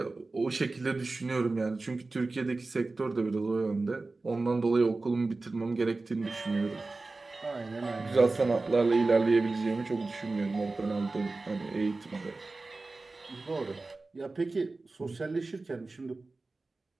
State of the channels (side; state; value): left; quieter; 3.5 dB